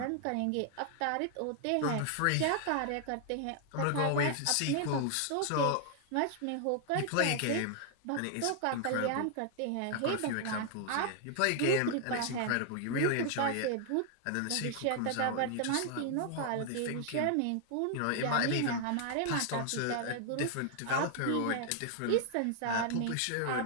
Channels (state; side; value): different; both; correlation 0.00